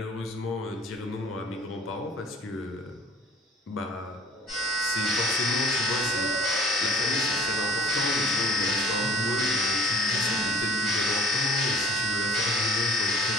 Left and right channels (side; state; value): both; normal; correlation 0.46